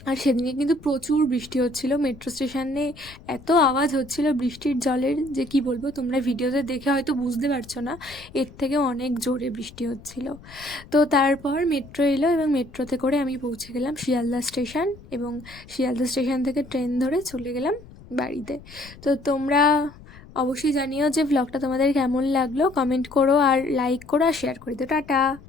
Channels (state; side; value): noise; left; rumble, 20 dB below the sound